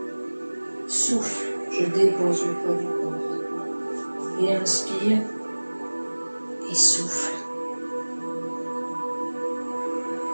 Souffle, je dépose le poids du corps. Et inspire. Et souffle.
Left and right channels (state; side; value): inverted; both; correlation -1.00